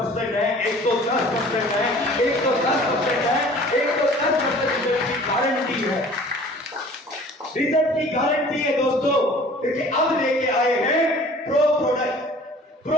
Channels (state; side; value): normal; both; correlation 0.48